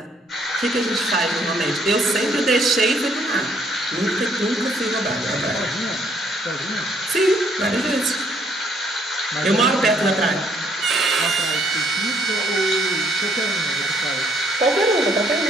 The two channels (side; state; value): both; normal; correlation 0.67